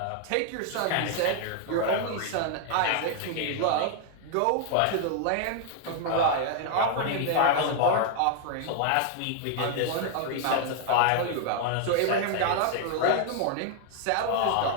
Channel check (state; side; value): different; both; correlation 0.00